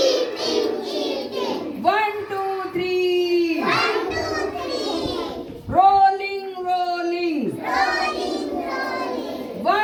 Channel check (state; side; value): identical; both; correlation 1.00